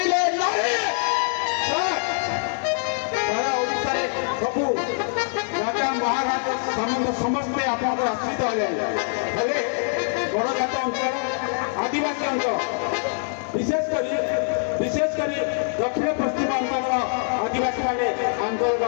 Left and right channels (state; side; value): silent; right; 62 dB below the other